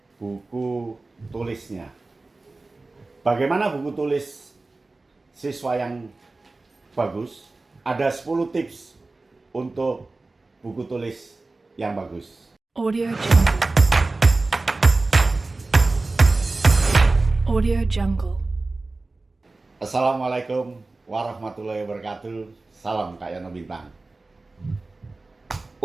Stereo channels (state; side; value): quieter; left; 3.3 dB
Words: buku tulisnya. Bagaimana buku tulis siswa yang bagus? Ada 10 tips untuk buku tulis yang bagus. Audio Jungle. Audio Jungle. Assalamualaikum warahmatullahi wabarakatuh. Salam Kak Yono Bintang.